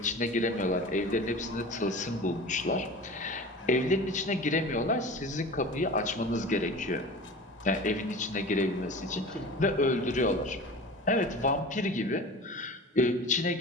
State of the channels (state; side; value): normal; both; correlation 0.36